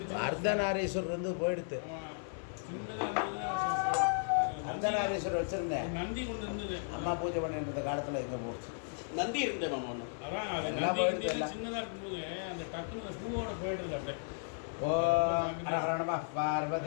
அர்த்தநாரீஸ்வரர் வந்து போயிடுத்து. அர்த்தநாரீஸ்வரர் வச்சுருந்தேன். நந்தி கொண்டு இருந்தது. அம்மா பூஜை பண்ணிட்டு இருந்த காலத்தில் எங்கே போச்சு. நந்தி இருந்தேன் மாமா ஒன்று. அதான் அது எல்லாம் நந்தி போயிடுது இருந்தது. எல்லாம். சின்னதா இருக்கும்போது அந்த டக்குனு அந்த பூவோட போயிடுது அப்படியே. ஓம் ஹர நமः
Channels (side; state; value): right; silent; 54 dB below the other